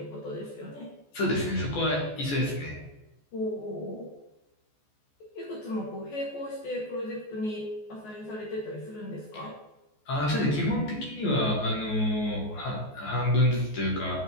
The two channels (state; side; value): late; right; 14 ms